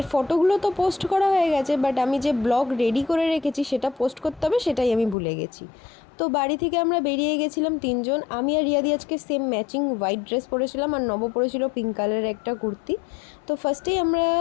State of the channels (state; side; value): drops out; right; at 5.2 s